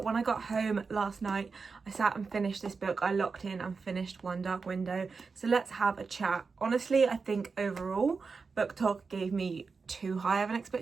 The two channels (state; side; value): quieter; left; 4.8 dB